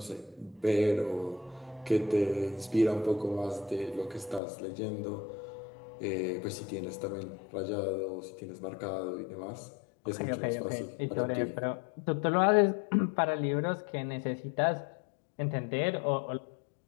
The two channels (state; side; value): drops out; right; at 4.4 s